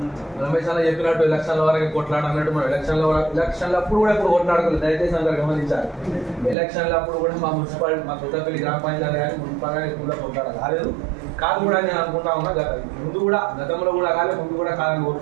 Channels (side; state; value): left; drops out; at 6.6 s